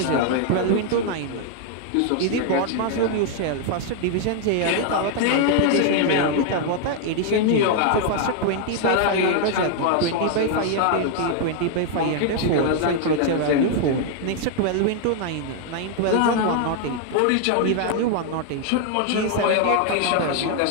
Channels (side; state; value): both; different; correlation 0.00